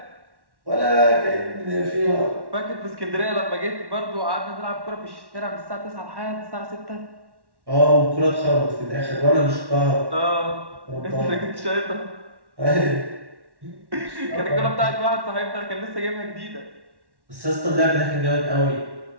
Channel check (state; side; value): late; left; 1.1 ms